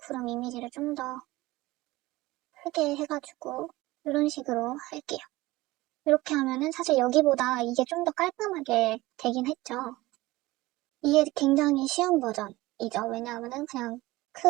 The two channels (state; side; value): quieter; left; 19.3 dB